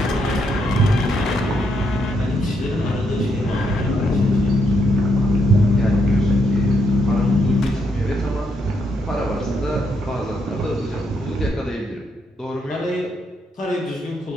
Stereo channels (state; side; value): normal; both; correlation 0.77